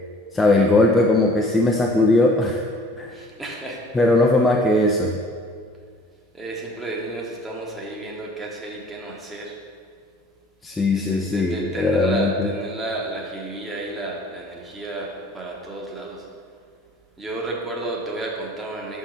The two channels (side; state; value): both; normal; correlation 0.53